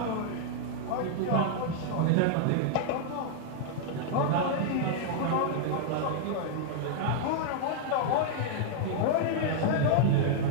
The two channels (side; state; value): both; different; correlation -0.01